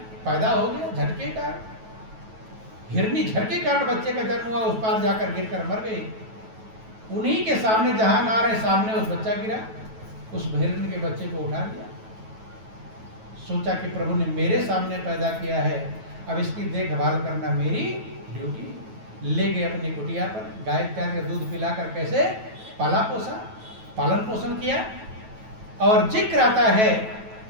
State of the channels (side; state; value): left; late; 9.2 ms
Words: पैदा हो गया झटके का। हिरनी झटके कारण बच्चे का जन्म हुआ, उस पार जाकर गिरकर मर गई। उन्हीं के सामने, जहां ना रहे सामने उस बच्चा गिरा, उस हिरनी के बच्चे को उठा लिया। सोचा कि प्रभु ने मेरे सामने पैदा किया है, अब इसकी देखभाल करना मेरी ड्यूटी। ले गए अपनी कुटिया पर, गाय इत्यादि का दूध पिलाकर कैसे पाला पोसा, पालन पोषण किया। और जिक्र आता है